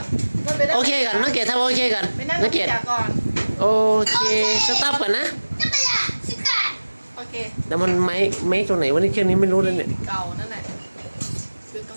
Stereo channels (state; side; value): inverted; both; correlation -1.00